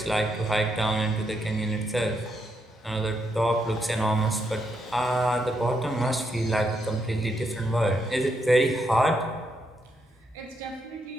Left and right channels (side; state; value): both; normal; correlation 0.79